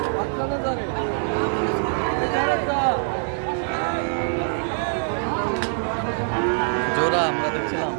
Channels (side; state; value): left; silent; digital silence